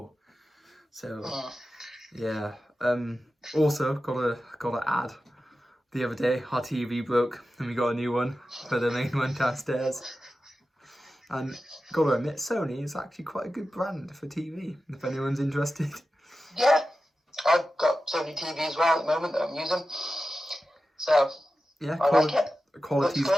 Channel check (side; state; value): both; normal; correlation 0.93